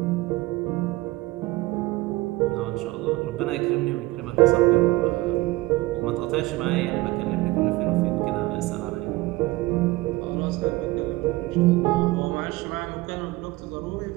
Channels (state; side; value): quieter; left; 20.3 dB